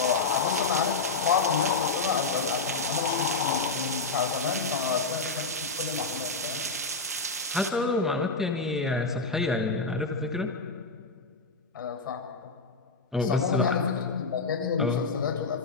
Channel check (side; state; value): right; quieter; 3.9 dB